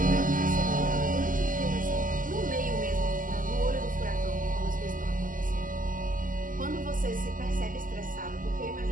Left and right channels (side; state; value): left; late; 0.40 ms